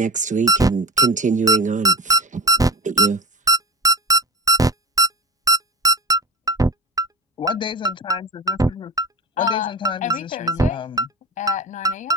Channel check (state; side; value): normal; both; correlation 0.27